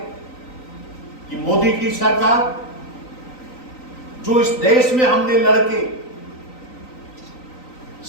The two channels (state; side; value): late; right; 3.9 ms